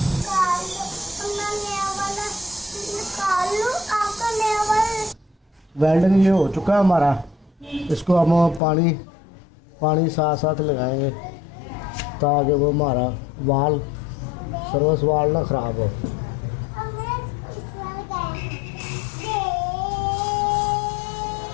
वेल्डिंग ये हो चुका है हमारा। इसको हम पानी साथ साथ लगाएंगे ताकि वो हमारा वाल सर्विस वाल ना ख़राब हो।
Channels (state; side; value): drops out; right; at 8.6 s